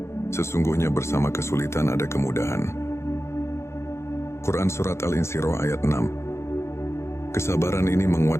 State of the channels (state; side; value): late; right; 0.13 ms